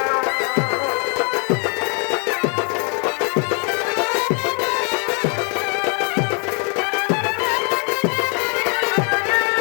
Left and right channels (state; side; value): quieter; right; 38.3 dB